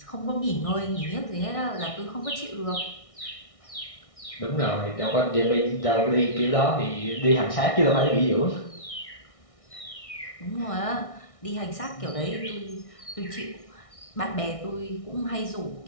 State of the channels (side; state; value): right; late; 1.6 ms